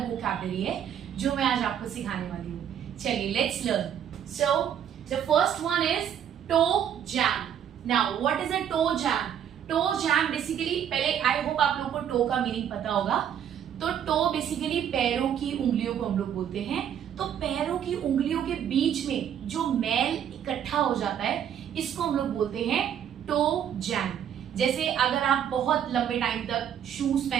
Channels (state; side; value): quieter; left; 9.2 dB